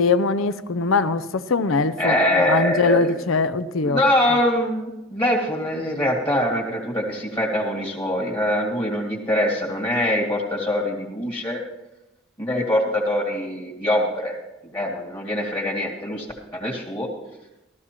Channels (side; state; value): both; normal; correlation 0.34